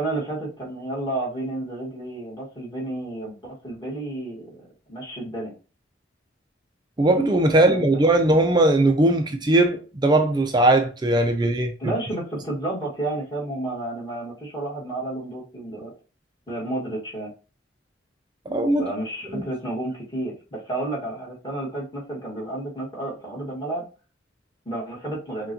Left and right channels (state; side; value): normal; both; correlation 0.46